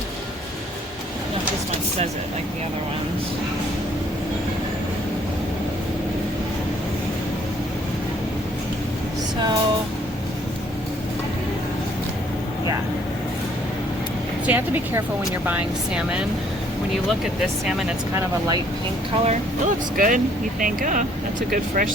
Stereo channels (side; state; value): both; normal; correlation 0.62